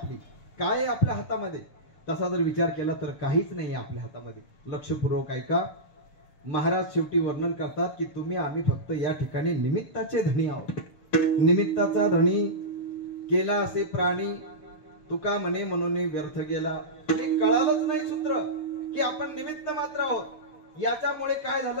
काय आहे आपल्या हातामध्ये? तसा जर विचार केला तर काहीच नाही आपल्या हातामध्ये. लक्षपूर्वक ऐका. महाराज शेवटी वर्णन करतात की तुम्ही आम्ही फक्त या ठिकाणी निमित्ताचे धनी आहोत. निमित्ताचा धनी केला असे प्राणी, तुका म्हणे म्हणून व्यर्थ गेला. हे कळालंच नाही सूत्र की आपण निमित्त मात्र आहोत. याच्यामुळे काय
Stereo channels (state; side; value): late; right; 6.6 ms